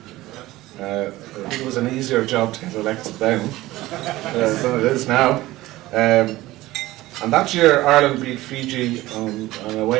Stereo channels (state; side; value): quieter; left; 17.5 dB